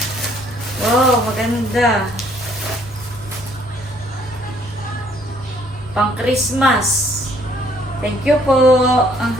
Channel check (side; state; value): both; normal; correlation 0.63